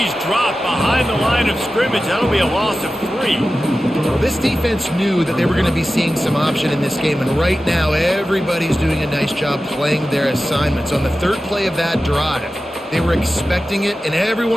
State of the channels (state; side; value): normal; both; correlation 0.94